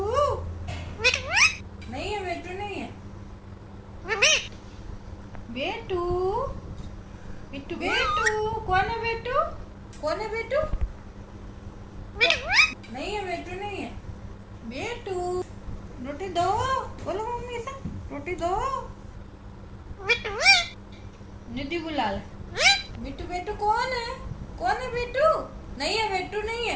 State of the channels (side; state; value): both; identical; correlation 1.00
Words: नहीं है, बिट्टू नहीं है। बेटू बिट्टू बेटू कौन है बिट्टू? कौन है बिट्टू? नहीं है, बिट्टू नहीं है। बेटू रोटी दो। बोलो मम्मी से रोटी दो। निधि बुला ले। बिट्टू बेटू कौन है? कौन है बिट्टू? नहीं है, बिट्टू नहीं